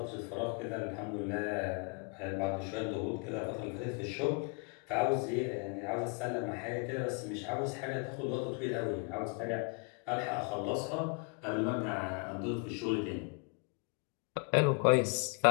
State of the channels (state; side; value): quieter; right; 35.0 dB